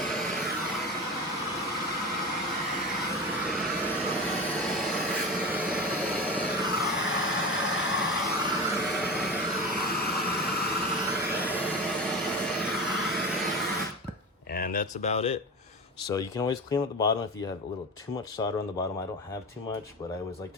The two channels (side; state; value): both; normal; correlation 0.27